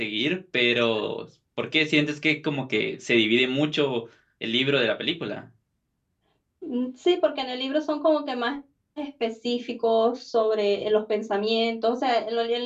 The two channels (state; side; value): identical; both; correlation 1.00